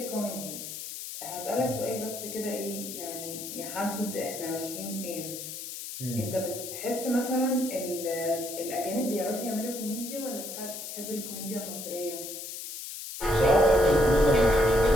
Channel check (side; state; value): left; noise; hiss, 8 dB below the sound